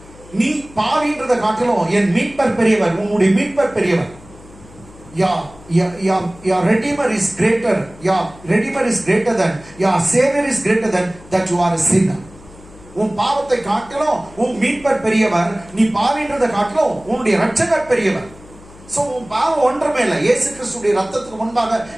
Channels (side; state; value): left; noise; hum, 21 dB below the sound